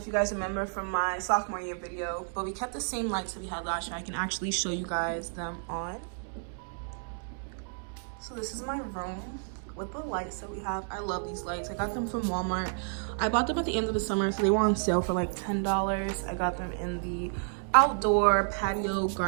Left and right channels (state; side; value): silent; left; 57 dB below the other